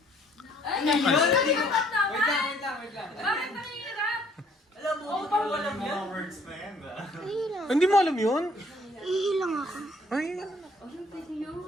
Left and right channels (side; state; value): both; normal; correlation 0.61